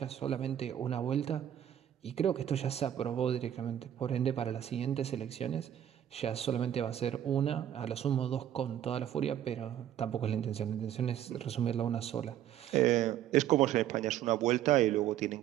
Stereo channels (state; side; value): quieter; left; 10.9 dB